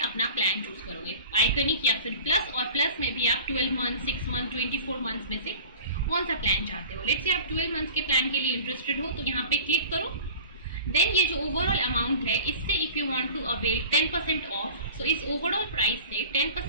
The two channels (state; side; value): inverted; both; correlation -0.40